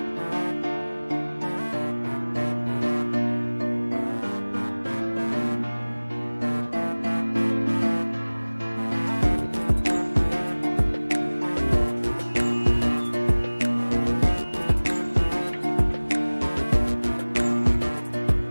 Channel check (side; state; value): both; inverted; correlation -1.00